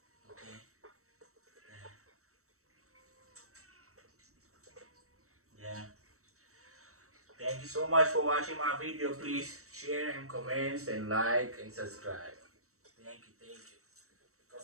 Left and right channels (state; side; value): late; left; 0.64 ms